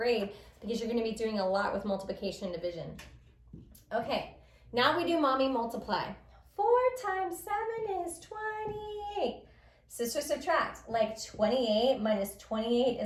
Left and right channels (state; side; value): identical; both; correlation 1.00